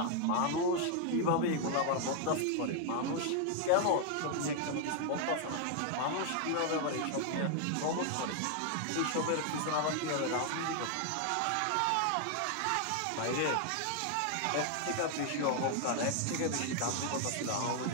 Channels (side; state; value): both; different; correlation 0.00